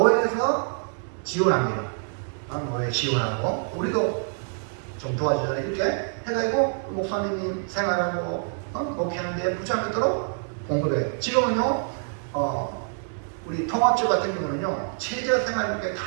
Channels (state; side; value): silent; left; 57 dB below the other